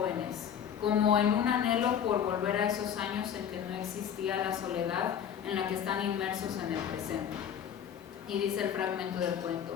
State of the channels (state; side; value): quieter; right; 8.7 dB